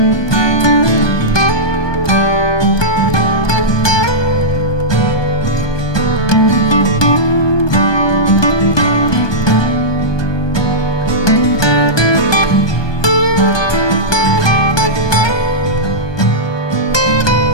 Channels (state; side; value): late; right; 1.2 ms